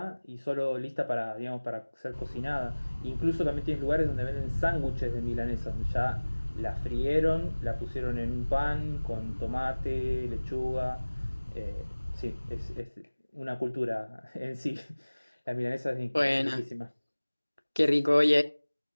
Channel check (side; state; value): both; inverted; correlation -1.00